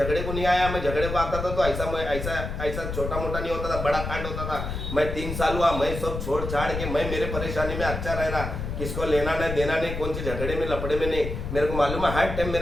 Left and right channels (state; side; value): noise; left; rumble, 5 dB below the sound